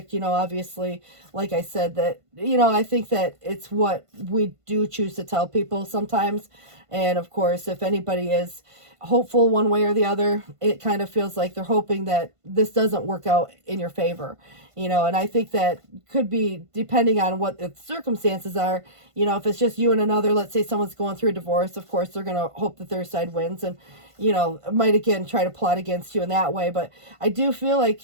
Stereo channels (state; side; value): late; left; 1.5 ms